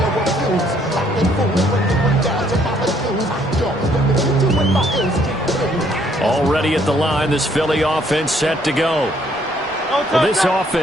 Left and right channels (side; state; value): both; normal; correlation 0.66